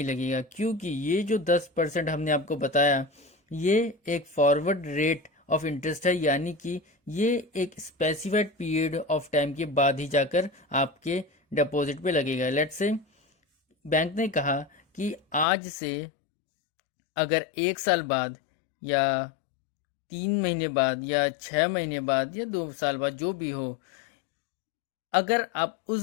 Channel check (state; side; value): drops out; right; at 15.5 s